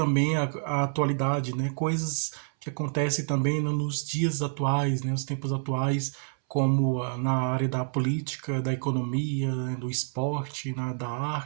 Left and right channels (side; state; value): left; silent; 59 dB below the other